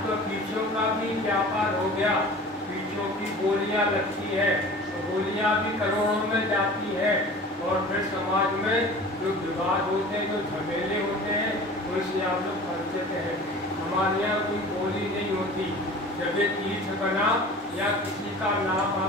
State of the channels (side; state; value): both; normal; correlation 0.41